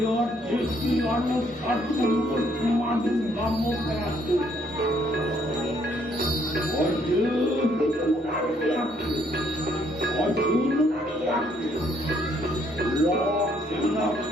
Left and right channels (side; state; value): both; normal; correlation 0.68